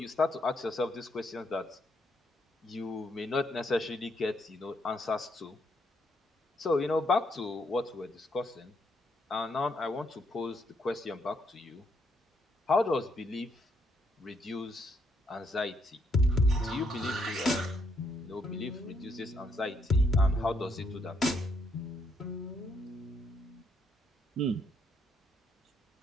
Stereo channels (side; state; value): both; normal; correlation 0.74